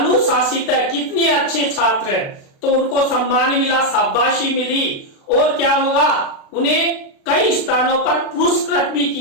है, कितने अच्छे छात्र हैं। तो उनको सम्मान मिला, शाबाशी मिली और क्या होगा, उन्हें कई स्थानों पर पुरस्कृत भी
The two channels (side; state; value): right; late; 36 ms